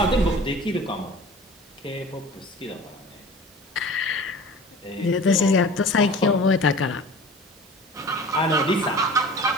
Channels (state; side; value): normal; both; correlation 0.41